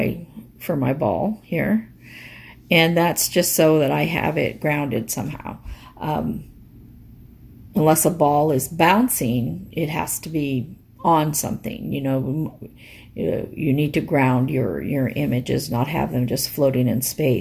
for my ball here, and that's just so that I have it grounded somehow. Unless a ball is bouncing, it has to be on something. You need to ground your images, not have them just floating in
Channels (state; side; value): identical; both; correlation 1.00